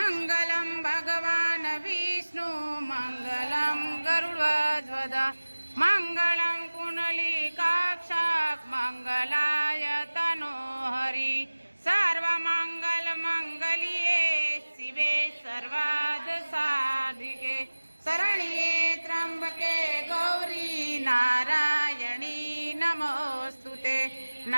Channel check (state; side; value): inverted; both; correlation -1.00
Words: ભગવાન વિષ્ણુ મંગલમ ગરુડધ્વજ મંગલમ કુંડલીકાક્ષક મંગલાય તનોહરી સર્વમંગલ મંગલ્યે શિવે સર્વાદ સાધિકે શરણ્યે ત્રંબકે ગૌરી નારાયણી નમોસ્તુતે